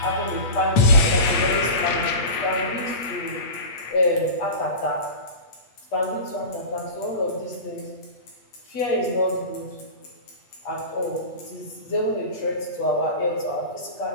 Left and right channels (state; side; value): late; right; 8.3 ms